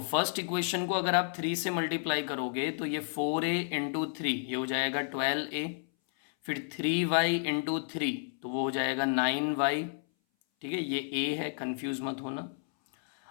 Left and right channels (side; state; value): right; silent; 57 dB below the other